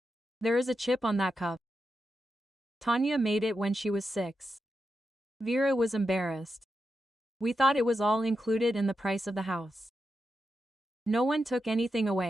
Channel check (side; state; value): both; normal; correlation 0.87